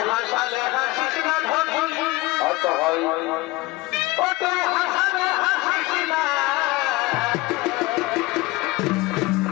হাসালে হাসিস না ধনি, আচ্ছা হয় তোকে হাসালে হাসিস না।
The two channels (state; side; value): quieter; right; 21.3 dB